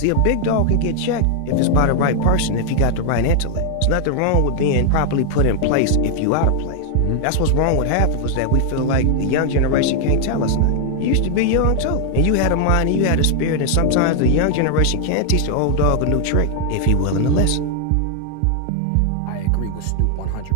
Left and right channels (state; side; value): different; both; correlation 0.00